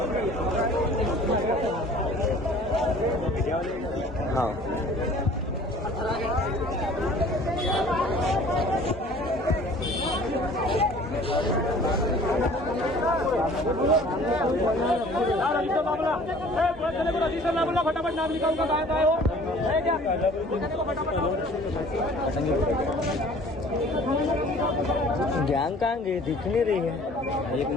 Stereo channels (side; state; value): both; normal; correlation 0.50